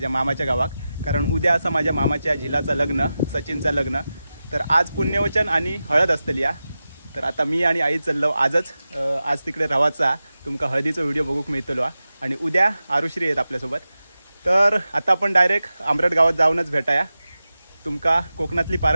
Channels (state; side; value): inverted; both; correlation -0.93